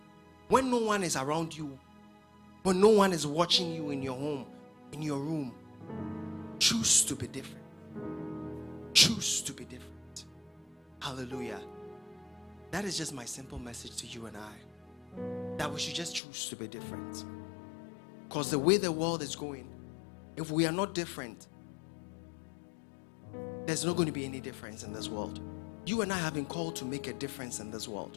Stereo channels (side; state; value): right; drops out; at 16.2 s